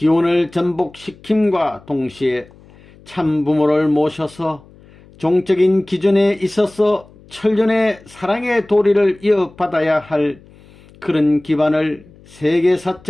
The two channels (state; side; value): noise; left; hum, 25 dB below the sound